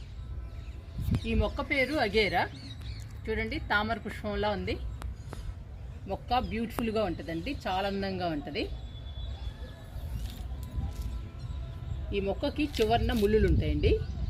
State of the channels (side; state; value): both; identical; correlation 1.00